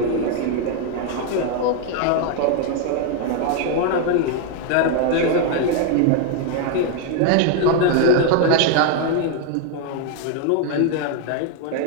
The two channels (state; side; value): different; both; correlation 0.01